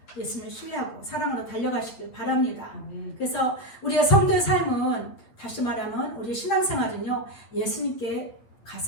예수님을 신뢰하고 사랑으로 달려가시길 바랍니다. 그래서 우리의 성도의 삶은 다시 말하면 우리의 신앙생활은요, 예수님께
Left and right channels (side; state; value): right; late; 8.8 ms